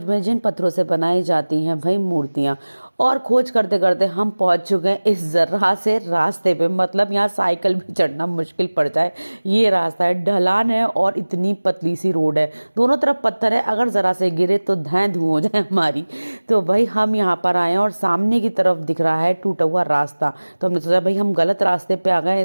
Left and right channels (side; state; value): both; inverted; correlation -1.00